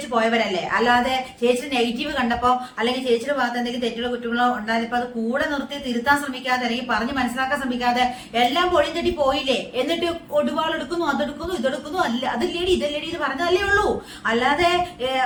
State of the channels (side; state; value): both; identical; correlation 1.00